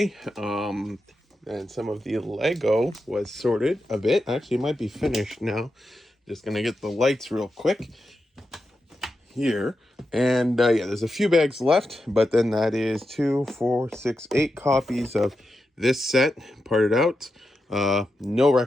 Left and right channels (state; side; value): normal; both; correlation 0.88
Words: and some of the Lego was sorted a bit. Actually, it might be finished now. Just gonna get the lights real quick here. And yeah, there's a few bags left, but then that is 2, 4, 6, 8 copies of this set parted out. No